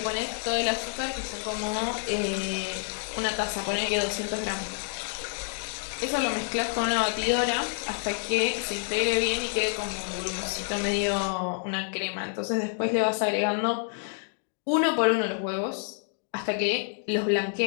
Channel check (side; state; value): right; silent; digital silence